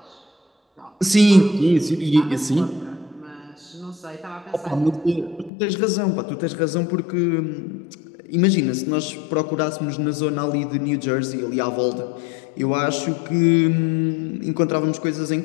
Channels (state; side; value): drops out; right; at 5.5 s